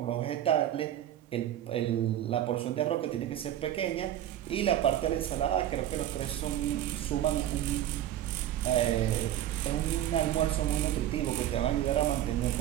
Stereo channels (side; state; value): left; quieter; 12.0 dB